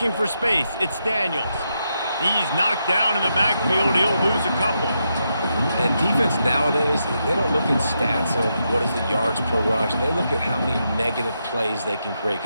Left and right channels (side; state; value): both; inverted; correlation -0.83